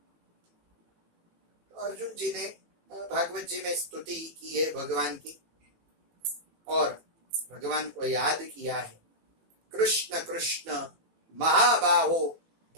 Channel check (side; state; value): left; late; 18 ms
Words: तो अर्जुन जी ने भागवत जी में स्तुति की है भगवान की और भगवान को याद किया है। कृष्ण कृष्ण महाबाहो